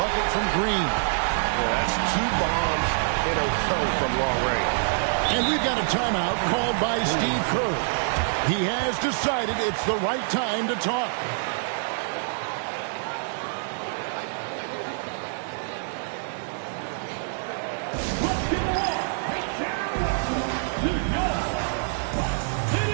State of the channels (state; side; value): silent; left; digital silence